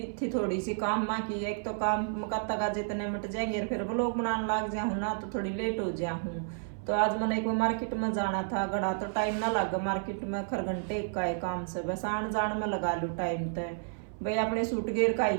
थी थोड़ी सी काम माँ की। एक तो काम मकाता का जितने मिट जाएंगे और फिर व्लॉग बनाने लग जाऊँ ना तो थोड़ी लेट हो जाऊँ। तो आज मैंने एक मार्केट में जाना था, गड़ा तो टाइम ना लगा मार्केट में, खर घंटे का है काम से, बस आन जान में लगा लूँ टाइम तय। भाई अपने सूट गेर का आई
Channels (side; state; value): left; silent; 57 dB below the other